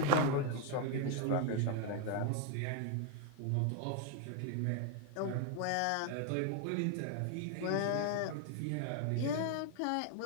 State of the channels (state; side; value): different; both; correlation 0.01